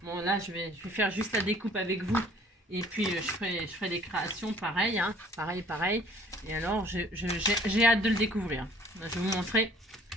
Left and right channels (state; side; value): normal; both; correlation 0.55